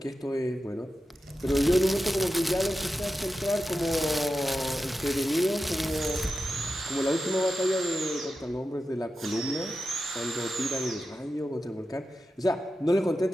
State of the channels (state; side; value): normal; both; correlation 0.91